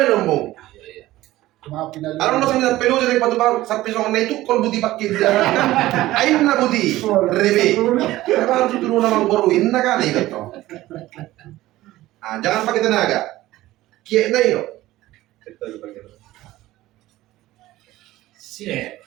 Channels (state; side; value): quieter; left; 16.4 dB